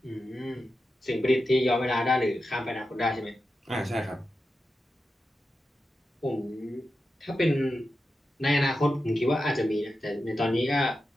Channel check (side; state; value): both; normal; correlation 0.91